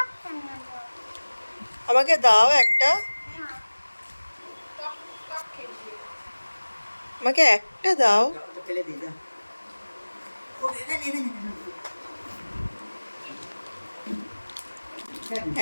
আমাকে দাও একটা, আমাকে একটা দাও।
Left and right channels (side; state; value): both; inverted; correlation -1.00